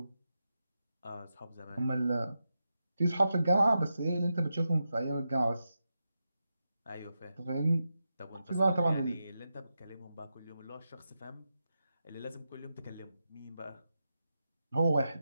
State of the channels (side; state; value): both; inverted; correlation -0.89